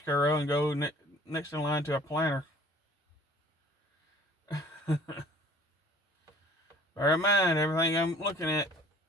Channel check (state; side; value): normal; both; correlation 0.51